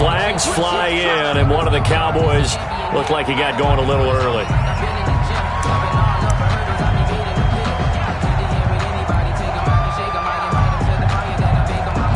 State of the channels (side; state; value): both; identical; correlation 1.00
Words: fly in, and one of the Cowboys looked like he got going a little early.